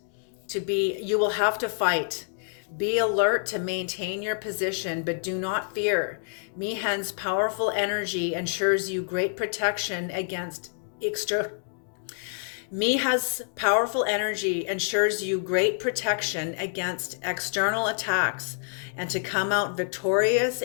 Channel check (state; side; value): silent; right; digital silence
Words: Be alert to maintain your position, but do not fear. Mihen's powerful energy ensures you great protection against Miha's powerful energy ensures you great protection against external attacks and to come out victorious